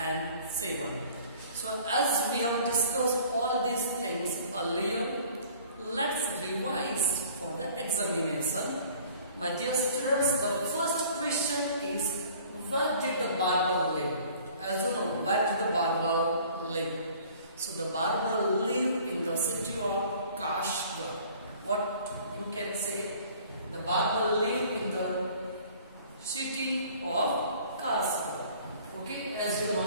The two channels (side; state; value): both; inverted; correlation -0.51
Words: 7. So as we have discussed all these things earlier, let's revise for the examination. My dear students, the first question is, where did the barber live? As you know, where did the barber live? So the barber lived in the city of Kashgar. What you can say? The barber lived in the city of Kashgar. Okay, as you